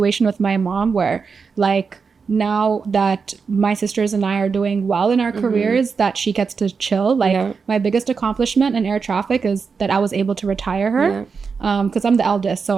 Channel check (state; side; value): quieter; left; 5.4 dB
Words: with my mom where, like, now that my sisters and I are doing well in our careers, that she gets to chill. Like, my biggest accomplishment in air traffic is that I was able to retire her. Because I'm the eldest,